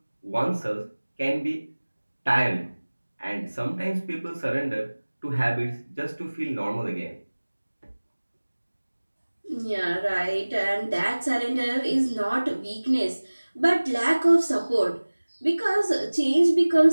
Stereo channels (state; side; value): inverted; both; correlation -1.00